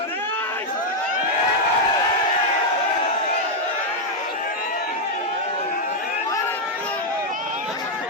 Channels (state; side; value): normal; both; correlation 0.00